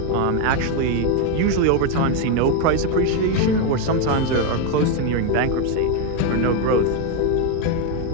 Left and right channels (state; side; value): different; both; correlation 0.02